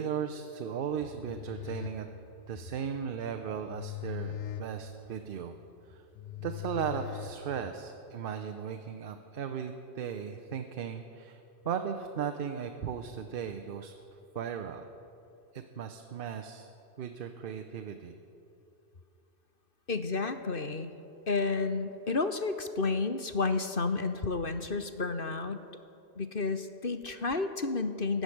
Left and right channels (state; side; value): late; right; 2.6 ms